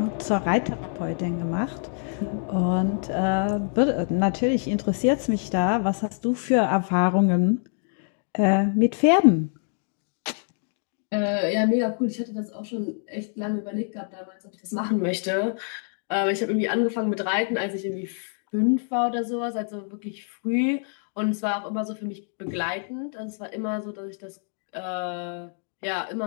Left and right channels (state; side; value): silent; right; 60 dB below the other